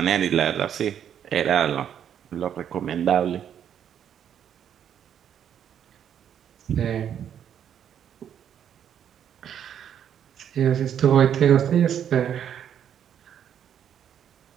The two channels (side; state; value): left; quieter; 9.2 dB